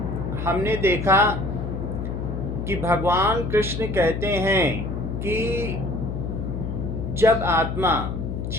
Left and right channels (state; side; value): noise; left; hum, 4 dB below the sound